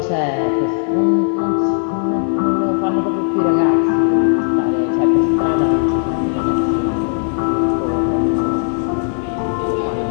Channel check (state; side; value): silent; right; digital silence